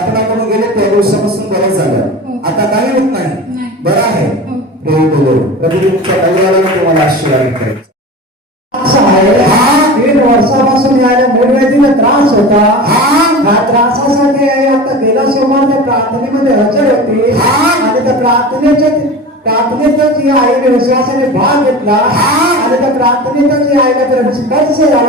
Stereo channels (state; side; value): normal; both; correlation 0.32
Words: करून गेले, त्या दिवसापासून बरं झालं. आता काही होत नाही, बरं आहे. प्रभू तुमच्या परिवाराला तुम्हाला आशीर्वाद करेल. असं आहे, 3 वर्षापासून याला मूळव्याधीला त्रास होता. ह्या त्रासासाठी आता गेल्या सोमवार त्या प्रार्थनेमध्ये हजर होती. आणि त्या प्रार्थनेतच या आईने विश्वासाने भाग घेतला. आणि त्या प्रार्थनेतच या आईला तर स्पर्श